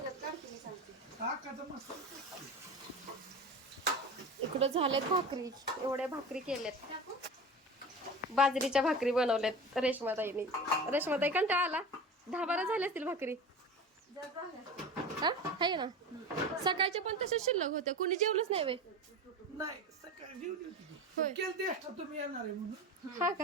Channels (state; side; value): normal; both; correlation 0.31